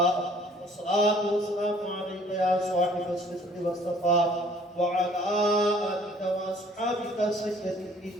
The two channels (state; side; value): normal; both; correlation 0.56